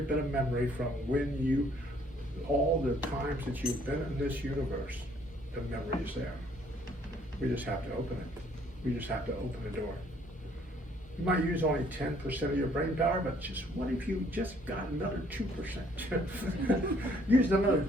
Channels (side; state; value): both; normal; correlation 0.63